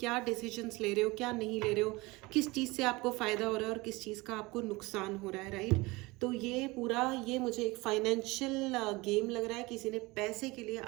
डिसीजंस ले रहे हो, क्या नहीं ले रहे हो, किस चीज़ से आपको फ़ायदा हो रहा है और किस चीज़ का आपको नुकसान हो रहा है। राइट, तो ये पूरा, ये मुझे एक फाइनेंशियल गेम लग रहा है। किसी ने पैसे के लिए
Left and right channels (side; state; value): left; quieter; 22.8 dB